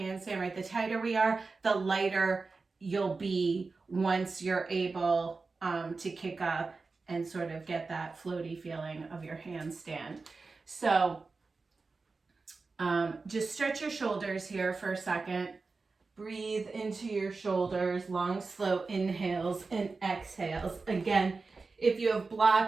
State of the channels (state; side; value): quieter; left; 4.1 dB